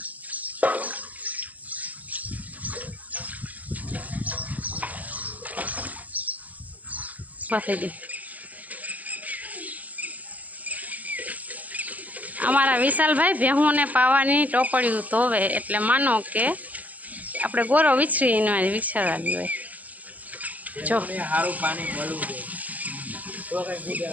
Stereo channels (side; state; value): left; late; 0.078 ms